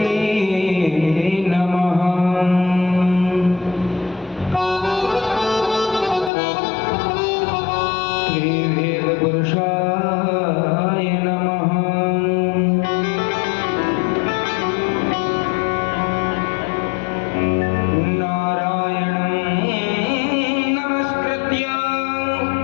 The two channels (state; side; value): drops out; right; at 6.3 s